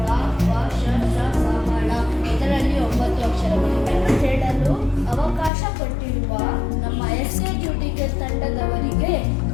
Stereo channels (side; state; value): right; drops out; at 5.5 s